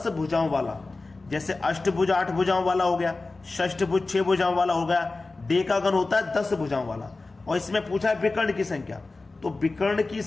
भुजाओं वाला, जैसे अष्टभुज 8 भुजाओं वाला हो गया, षष्ठभुज 6 भुजाओं वाला हो गया, डेकागन होता है 10 भुजाओं वाला। और इसमें पूछा है विकर्ण की संख्या, तो विकर्ण की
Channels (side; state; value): right; quieter; 3.5 dB